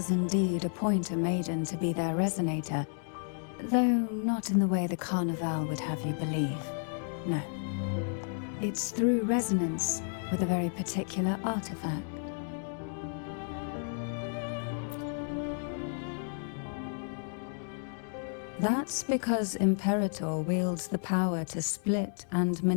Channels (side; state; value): right; silent; 56 dB below the other